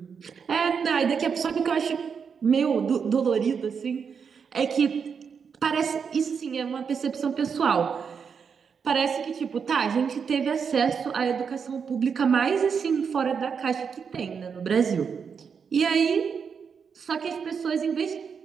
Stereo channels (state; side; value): quieter; left; 6.4 dB